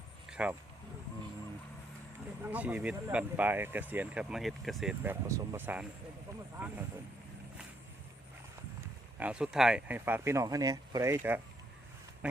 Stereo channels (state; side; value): normal; both; correlation 0.74